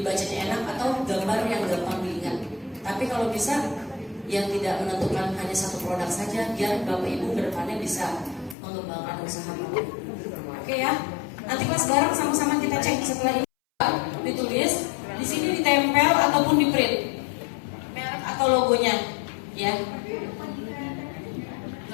enak, atau gambar yang gampang diingat. Tapi kalau bisa yang tidak menentukan hanya satu produk saja, biar Bapak Ibu kedepannya bisa mengembangkan usaha Bapak. Oke ya, nanti kelas bareng sama-sama kita cek setelah ini ditulis di sini, ditempel ataupun di print merek atau logonya, ya.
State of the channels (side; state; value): right; drops out; at 8.6 s